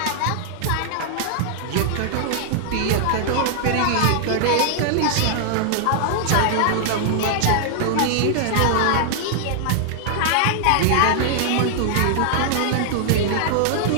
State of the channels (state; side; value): different; both; correlation -0.01